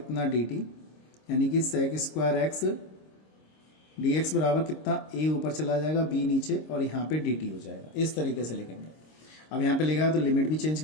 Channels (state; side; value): late; right; 26 ms